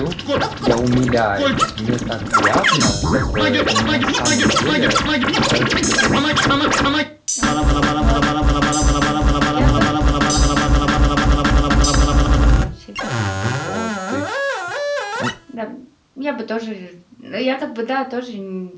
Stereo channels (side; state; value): both; identical; correlation 1.00